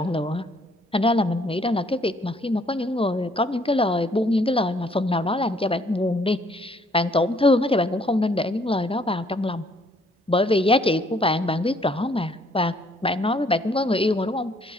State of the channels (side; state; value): both; normal; correlation 0.64